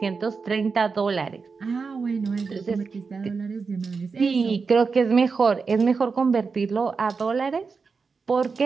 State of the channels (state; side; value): quieter; left; 4.9 dB